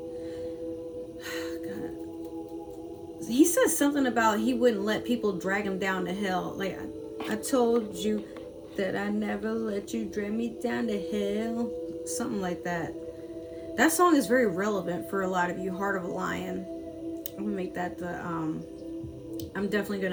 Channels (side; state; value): both; identical; correlation 1.00